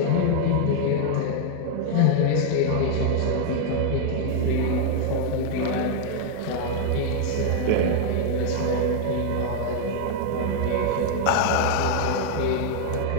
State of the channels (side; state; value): both; different; correlation 0.00